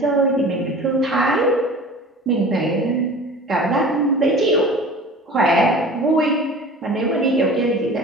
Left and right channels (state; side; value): normal; both; correlation 0.40